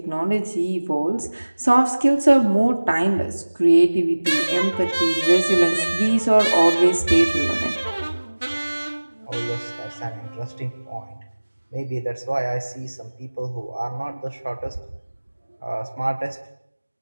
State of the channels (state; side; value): inverted; both; correlation -1.00